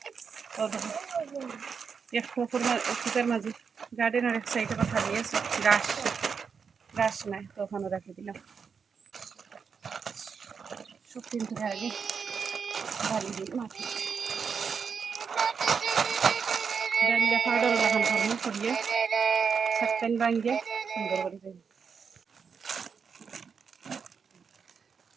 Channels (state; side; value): quieter; left; 6.1 dB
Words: এক ফুটের মাঝে গার্ডেনের এক সাইডে কথা দিয়েছে গাছ গাছ নাই, তো ওখানে রাখি দিলাম। সব কিন্তু আগে বালি দিই মাটি ডালিয়া পাউডার লাগান করবো করিয়ে সাতটান ভাঙিয়ে সুন্দর করে দিই।